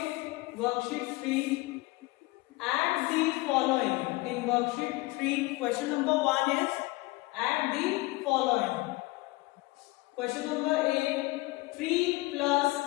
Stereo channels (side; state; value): right; quieter; 22.1 dB